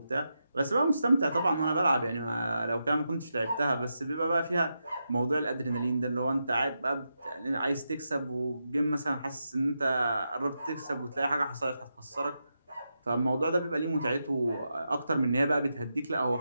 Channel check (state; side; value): inverted; both; correlation -0.86